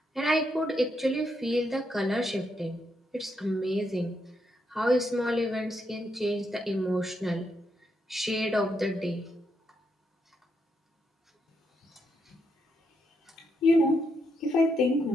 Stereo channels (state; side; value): normal; both; correlation 0.79